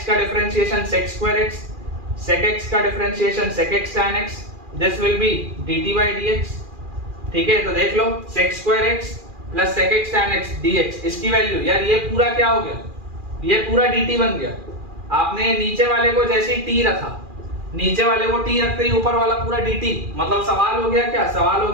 का differentiation sec square x, sec x का differentiation sec x tan x, this will be dt by dx। ठीक है, तो देख लो sec square x plus sec x tan x dx, इसकी value यार ये पूरा क्या हो गया, ये पूरा dt बन गया, आपने नीचे वाले को जैसे ही टी रखा, नीचे वाले को टी रखते ही ऊपर वाला पूरा dt, मतलब सवाल हो गया क्या, सवाल हो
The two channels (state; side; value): late; left; 2.4 ms